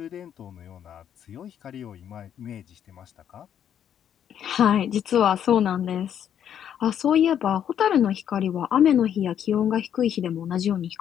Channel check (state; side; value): quieter; right; 9.3 dB